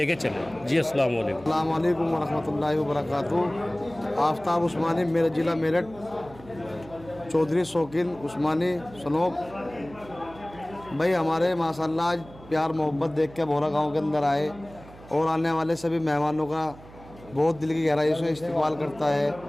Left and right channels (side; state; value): right; noise; hum, 20 dB below the sound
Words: चलें। जी अस्सलाम वालेकुम। अस्सलाम वालेकुम व रहमतुल्लाहि व बरकातुहू। आफ्ताब उस्मानी, मेरा ज़िला मेरठ, चौधरी शौकीन उस्मानी सनोब भाई, हमारे माशाल्लाह आज प्यार मोहब्बत देख के भोरा गांव के अंदर आए और आने वाले सभी मेहमानों का बहुत दिल की गहराई से इस्तेमाल करता है।